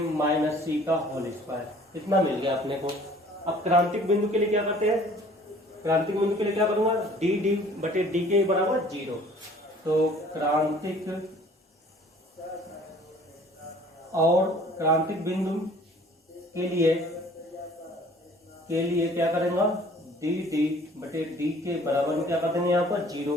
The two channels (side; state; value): both; normal; correlation 0.52